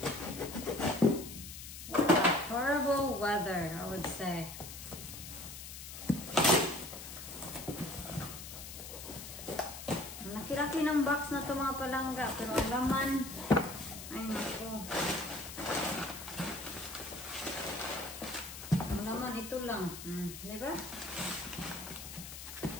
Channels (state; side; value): noise; left; hiss, 11 dB below the sound